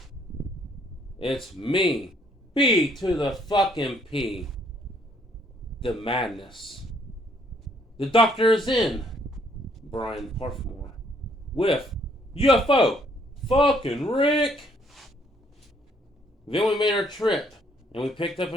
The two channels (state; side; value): normal; both; correlation 0.66